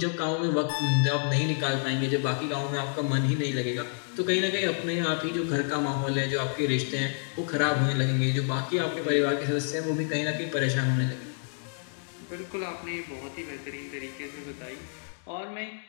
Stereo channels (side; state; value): right; silent; 58 dB below the other